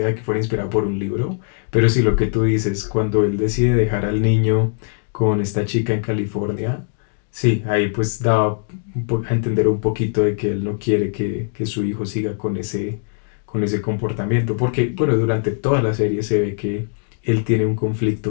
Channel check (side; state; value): right; silent; digital silence